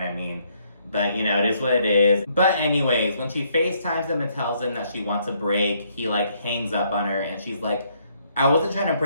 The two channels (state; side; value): inverted; both; correlation -0.70